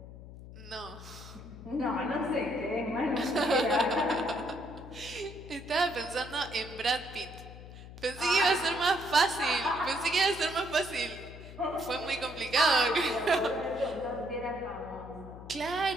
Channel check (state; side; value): noise; left; hum, 15 dB below the sound